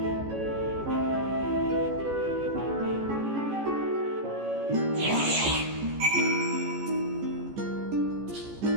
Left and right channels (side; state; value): left; late; 14 ms